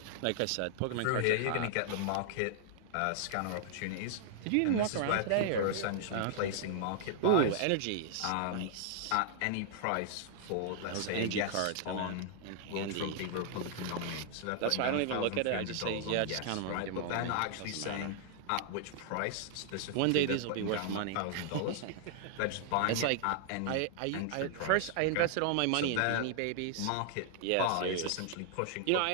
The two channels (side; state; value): both; different; correlation -0.01